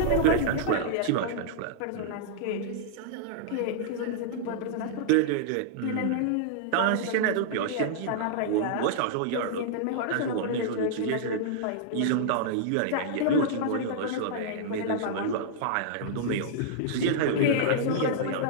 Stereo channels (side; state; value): both; different; correlation -0.01